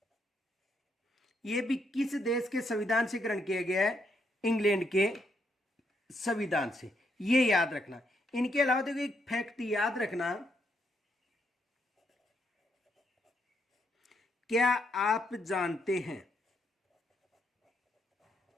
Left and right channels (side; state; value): both; normal; correlation 0.76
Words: यह भी किस देश के संविधान से ग्रहण किया गया है? इंग्लैंड के संविधान से। ये याद रखना। इनके अलावा देखो एक फैक्ट याद रखना, क्या आप जानते हैं,